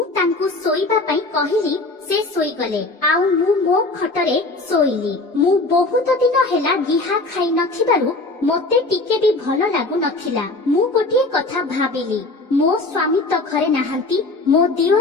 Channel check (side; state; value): right; quieter; 3.1 dB